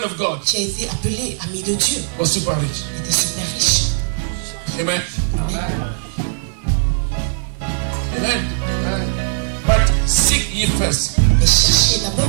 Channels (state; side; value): silent; left; 65 dB below the other